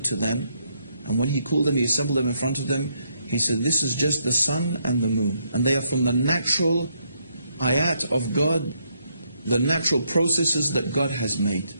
to them, and when he called them, he assembled them in front of them, he said, this is just the sun and the moon. And they are from the natural ayat of God, the natural processes that God has made.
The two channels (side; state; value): both; inverted; correlation -0.75